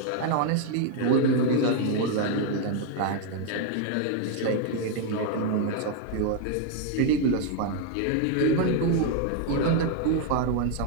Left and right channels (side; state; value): both; different; correlation 0.01